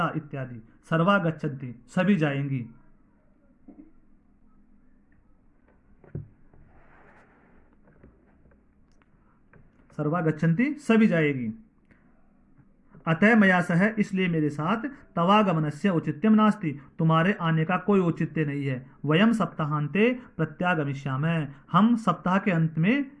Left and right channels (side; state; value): both; identical; correlation 1.00